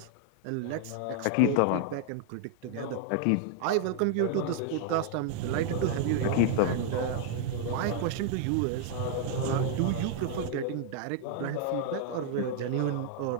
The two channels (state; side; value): different; both; correlation 0.00